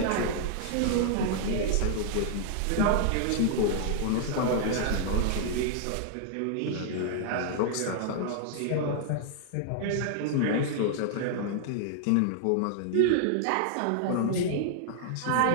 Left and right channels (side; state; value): both; different; correlation -0.01